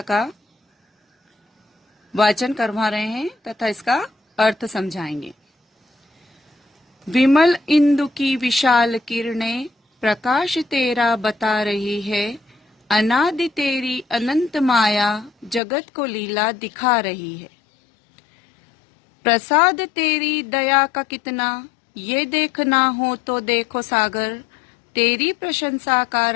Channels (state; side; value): drops out; right; at 15.6 s